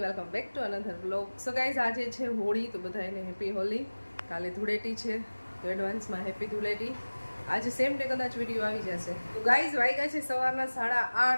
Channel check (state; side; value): inverted; both; correlation -1.00